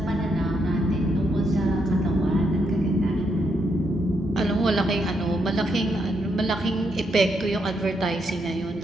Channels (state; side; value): normal; both; correlation 0.78